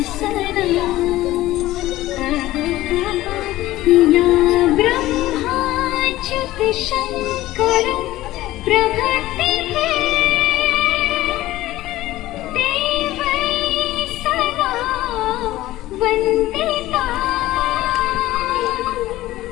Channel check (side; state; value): right; quieter; 16.2 dB